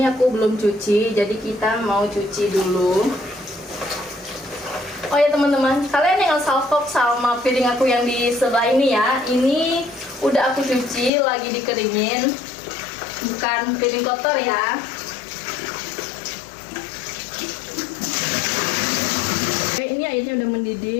aku belum cuci, jadi kita mau cuci dulu. Oh ya teman-teman, kalian jangan salfok sama piring aku yang di sebelah ini ya. Ini udah aku cuci, lagi dikeringin, bukan piring kotor ya. Oke, ini airnya udah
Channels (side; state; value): right; drops out; at 11.1 s